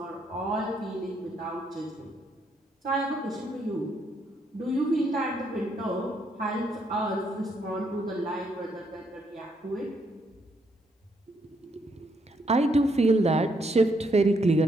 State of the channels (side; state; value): both; normal; correlation 0.74